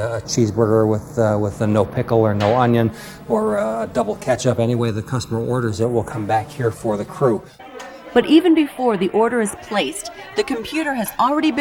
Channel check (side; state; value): both; identical; correlation 1.00